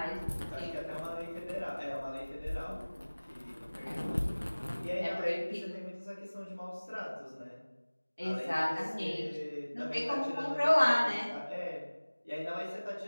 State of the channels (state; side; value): inverted; both; correlation -1.00